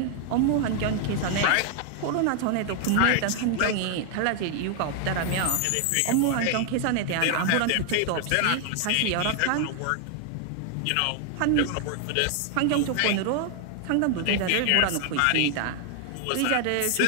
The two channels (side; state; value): both; different; correlation 0.00